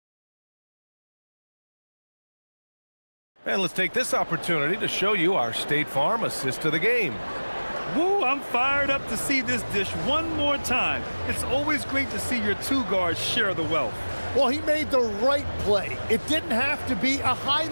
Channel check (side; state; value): both; inverted; correlation -1.00